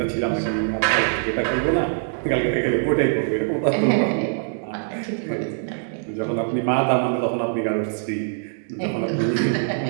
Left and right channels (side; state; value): left; silent; digital silence